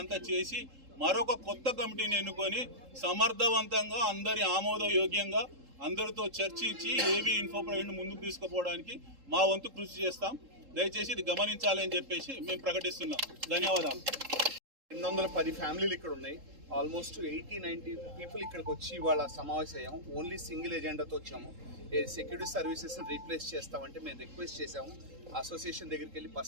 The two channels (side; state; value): left; late; 3.7 ms